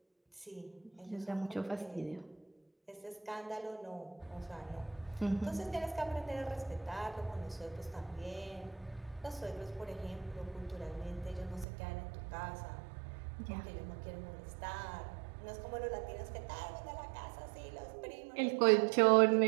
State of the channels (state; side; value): drops out; left; at 11.7 s